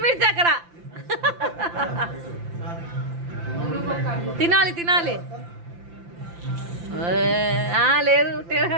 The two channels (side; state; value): left; late; 5.8 ms